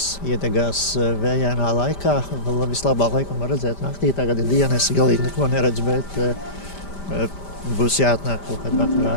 iedegās vējainā laikā. Vislabāk laikam var redzēt naktī, tagad ir diena, es galīgi neko neredzu, bet būs jāatnāk kaut kad vakarā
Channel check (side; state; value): right; late; 5.1 ms